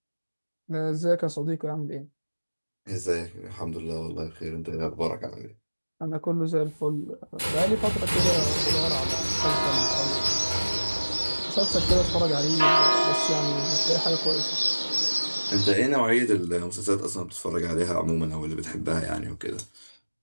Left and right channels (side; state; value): both; inverted; correlation -1.00